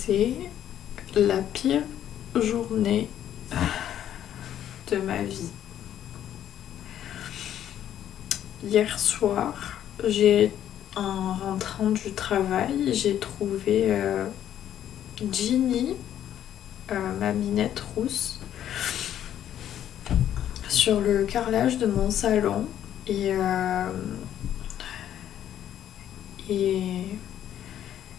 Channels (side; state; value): right; quieter; 10.8 dB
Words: la pire journée de ma vie. Hier soir, en rentrant du travail, j'ai trouvé Ginny, ma minette rousse, sur le carrelage de mon salon et